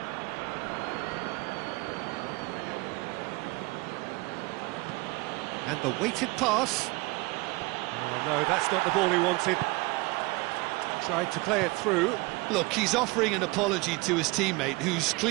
And the weighted pass. Oh, no, that's not the ball he wanted. Tried to play it through. Look, he's offering an apology to his teammate, who's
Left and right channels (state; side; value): quieter; left; 24.1 dB